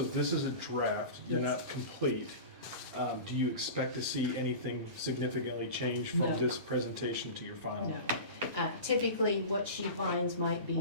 this is a draft, they're Yes. not complete. Do you expect to see anything significantly change from No. this presentation to your final? No. Typically, what she finds might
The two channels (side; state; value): both; inverted; correlation -0.32